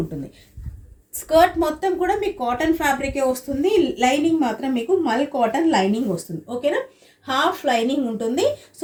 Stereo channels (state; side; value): identical; both; correlation 1.00